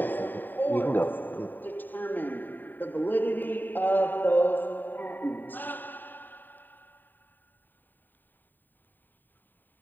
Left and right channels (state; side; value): late; right; 0.091 ms